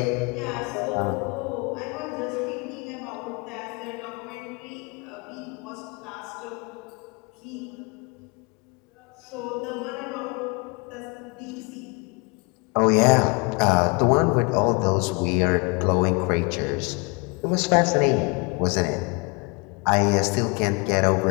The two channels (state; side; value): quieter; right; 30.8 dB